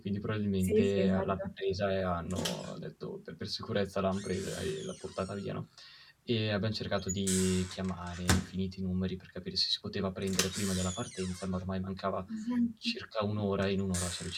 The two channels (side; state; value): both; identical; correlation 1.00